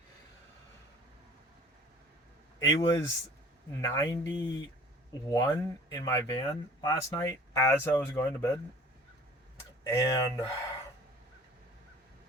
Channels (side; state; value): both; normal; correlation 0.48